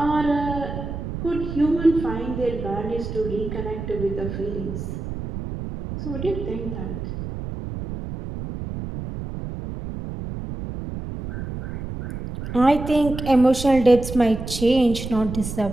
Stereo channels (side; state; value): right; noise; rumble, 7 dB below the sound